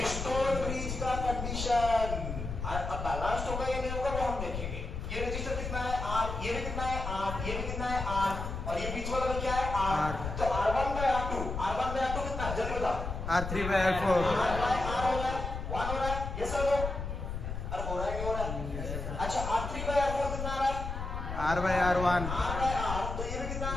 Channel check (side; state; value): left; noise; rumble, 5 dB below the sound